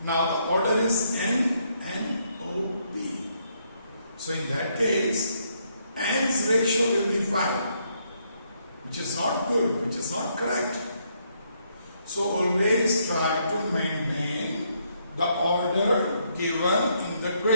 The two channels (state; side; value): inverted; both; correlation -0.74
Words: Now the order is N O P. So in that case, N's ratio will be 5, which is not good, which is not correct. So always try to maintain the order given in the